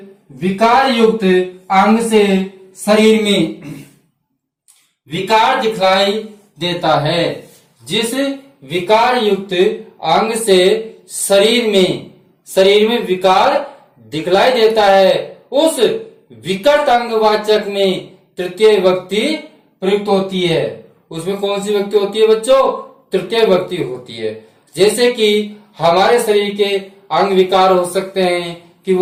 विकार युक्त अंग से शरीर में विकार दिखलाई देता है, जिस विकार युक्त अंग से शरीर में, शरीर में विकार दिखलाई देता है, उस विकट अंगवाचक में तृतीय विभक्ति प्रयुक्त होती है। उसमें कौन सी विभक्ति होती है बच्चों? तृतीय विभक्ति होती है। जैसे कि हमारे शरीर के अंग विकार हो सकते हैं कि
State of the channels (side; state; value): both; identical; correlation 1.00